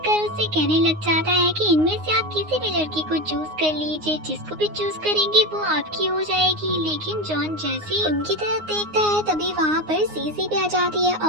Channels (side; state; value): left; late; 9.6 ms